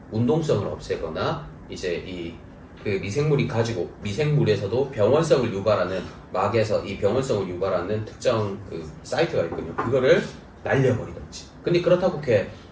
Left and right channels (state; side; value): identical; both; correlation 1.00